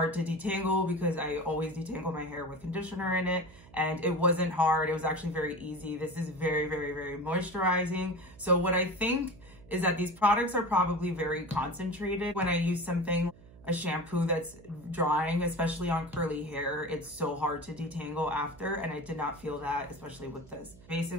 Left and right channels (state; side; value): noise; right; hum, 22 dB below the sound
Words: to detangle because I always detangle my hair with conditioner in it. And it wasn't hard. It was actually very easy. This is very, very, very moisturizing. So what I think is that these products are probably very concentrated. When I use something, a shampoo that's drying, especially on curly hair, it's so hard to detangle after, and I did not feel that, especially with this.